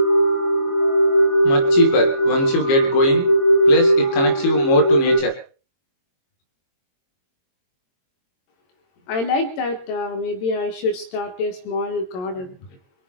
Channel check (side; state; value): right; late; 22 ms